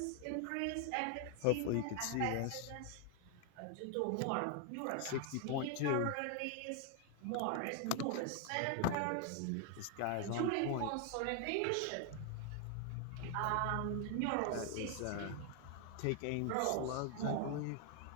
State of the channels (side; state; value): both; different; correlation 0.00